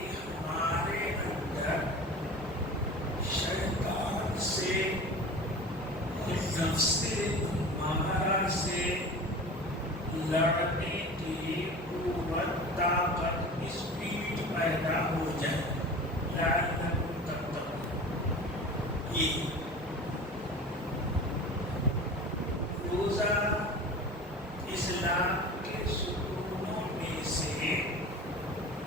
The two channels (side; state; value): both; normal; correlation 0.36